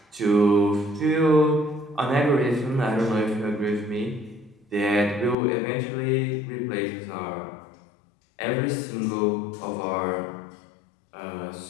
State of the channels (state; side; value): drops out; right; at 5.4 s